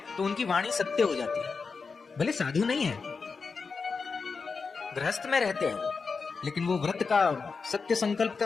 तो उनकी वाणी सत्य हो जाती है। भले साधु नहीं है, गृहस्थ में रहते हैं, लेकिन वो व्रत का, सत्य संकल्प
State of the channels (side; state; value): right; quieter; 4.8 dB